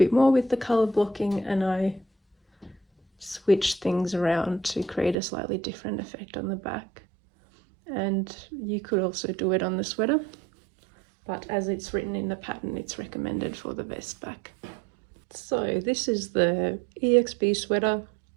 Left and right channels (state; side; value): drops out; left; at 5.2 s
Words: more with the colour blocking, and I switched things around to create a slightly different effect on the back. And you could also do it on the sweater, but as it's written in the pattern it's recommended for the vest back. So this is the EXP sweater,